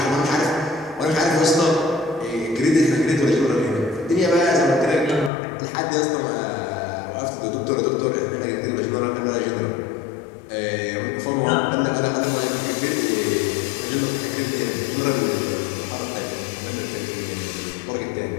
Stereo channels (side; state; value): right; drops out; at 5.3 s